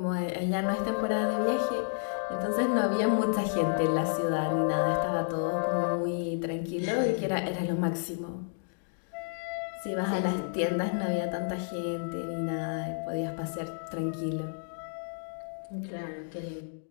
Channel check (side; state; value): right; silent; digital silence